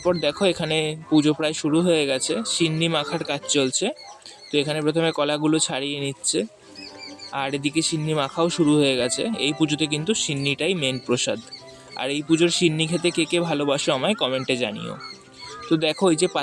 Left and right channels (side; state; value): both; identical; correlation 1.00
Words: দেখো, এখানে পুজো প্রায় শুরু হয়ে গেছে, সিন্নি মাখার কাজ চলছে। তো এখানে প্রথমে কলাগুলো ছাড়িয়ে নিচ্ছে, আর এদিকে সিন্নি মাখাও শুরু হয়ে গেছে। এই পুজোতে কিন্তু সিন্নিটাই মেন প্রসাদ। আর এই পুজোর সিন্নি খেতে কে কে ভালোবাসো আমায় কমেন্টে জানিও। তো দেখো, এই যে